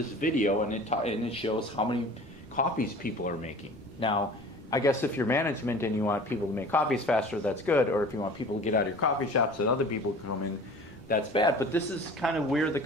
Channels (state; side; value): late; left; 1.2 ms